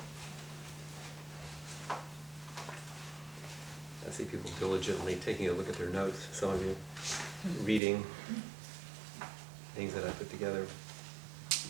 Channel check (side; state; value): left; drops out; at 7.8 s